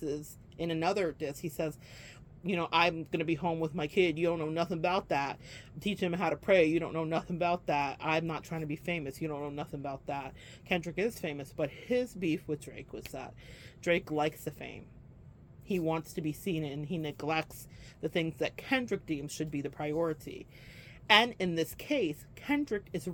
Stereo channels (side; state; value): both; identical; correlation 1.00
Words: is, in another disc, he says, you know, I'm going to be home with my kid. You don't know nothing about that. Teach him how to pray. You don't know nothing about that. I'm not trying to be famous. You don't know nothing about that. Kendrick is famous, but his beef with Drake was that Drake likes the fame. He wants to be seen, and he neglects the things that Kendrick deems should be the priority. And in this case, Kendrick is